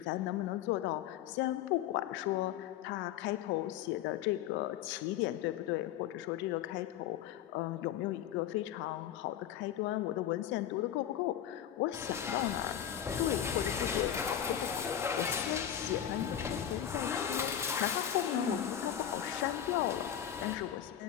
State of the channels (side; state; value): right; quieter; 10.4 dB